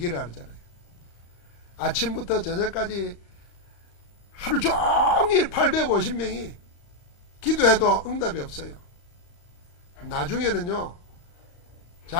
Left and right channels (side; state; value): right; late; 35 ms